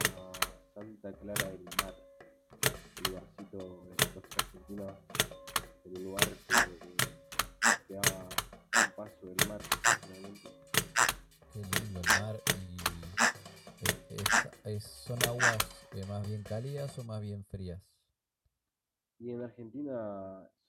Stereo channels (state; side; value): identical; both; correlation 1.00